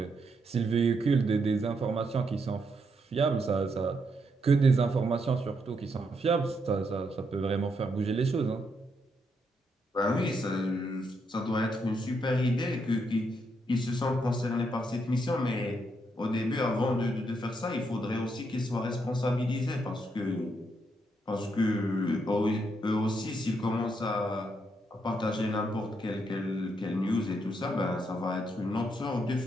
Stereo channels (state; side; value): normal; both; correlation 0.78